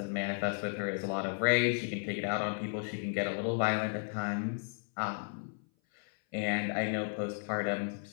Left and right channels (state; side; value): silent; right; 55 dB below the other